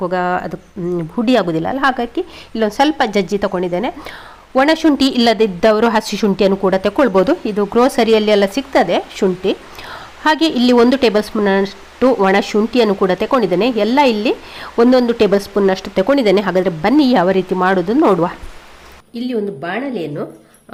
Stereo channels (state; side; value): identical; both; correlation 1.00